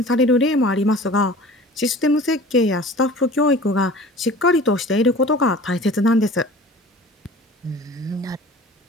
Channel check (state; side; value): normal; both; correlation 0.43